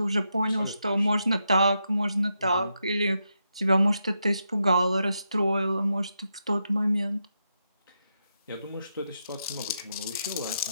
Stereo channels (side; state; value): both; inverted; correlation -0.84